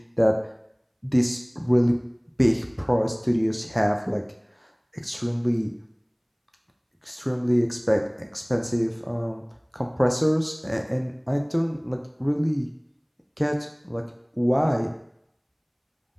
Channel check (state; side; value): identical; both; correlation 1.00